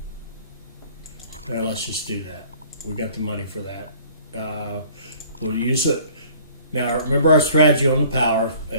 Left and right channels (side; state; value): both; inverted; correlation -0.53